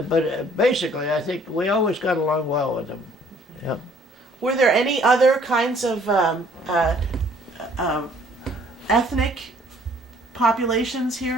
But basically, I think we always got along well with them. Yeah. Were there any other kinds of ethnic populations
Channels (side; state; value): both; normal; correlation 0.59